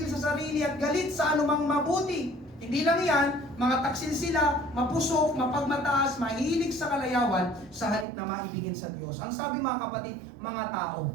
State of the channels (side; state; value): left; drops out; at 8.1 s